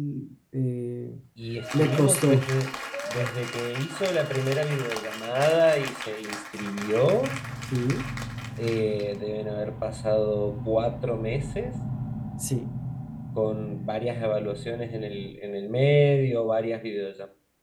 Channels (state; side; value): identical; both; correlation 1.00